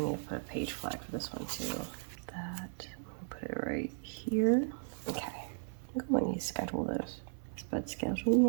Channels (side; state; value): left; silent; 54 dB below the other